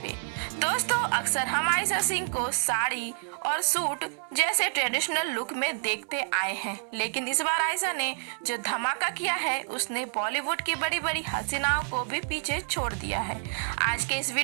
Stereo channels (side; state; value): left; silent; 59 dB below the other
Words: पे। दोस्तों, अक्सर हम आयशा सिंह को साड़ी और सूट जैसे ट्रेडिशनल लुक में देखते आए हैं, लेकिन इस बार आयशा ने जो धमाका किया है उसने बॉलीवुड की बड़ी बड़ी हसीनाओं को भी पीछे छोड़ दिया है। आज के इस